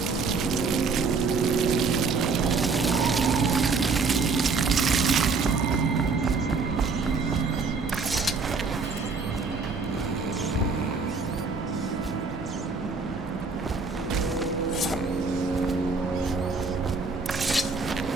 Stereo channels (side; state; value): left; quieter; 4.5 dB